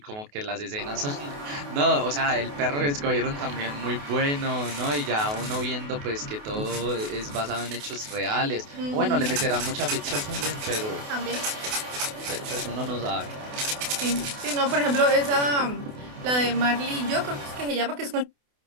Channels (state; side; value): late; left; 28 ms